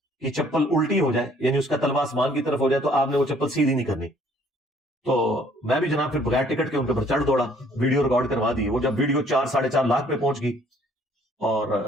کی چپل الٹی ہو جائے، یعنی اس کا تلوا آسمان کی طرف ہو جائے، تو آپ نے وہ چپل سیدھی نہیں کرنی۔ تو میں بھی جناب پھر بغیر ٹکٹ کے ان کے اوپر چڑھ دوڑا، ویڈیو ریکارڈ کروا دی۔ وہ جب ویڈیو 4-4.5 لاکھ پہ پہنچ گئی،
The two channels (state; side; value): normal; both; correlation 0.60